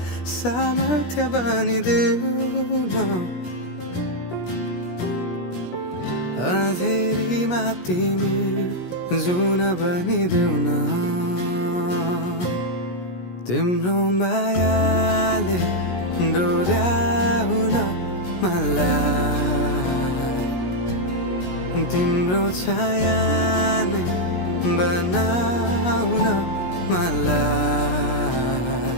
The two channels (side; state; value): right; late; 17 ms